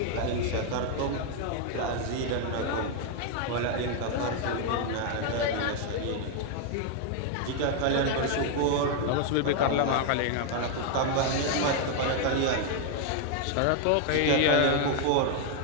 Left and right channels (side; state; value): both; different; correlation 0.00